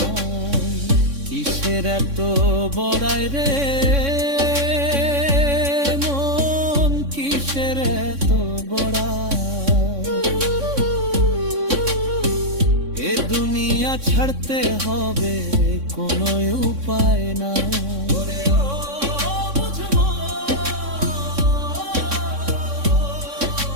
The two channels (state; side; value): late; left; 3.6 ms